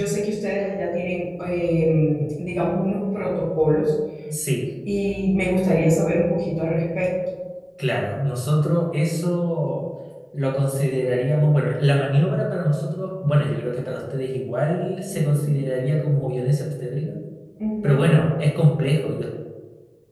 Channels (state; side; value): identical; both; correlation 1.00